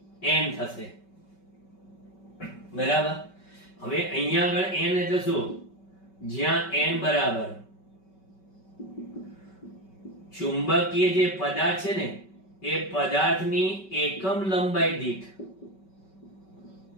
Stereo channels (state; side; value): late; right; 5.2 ms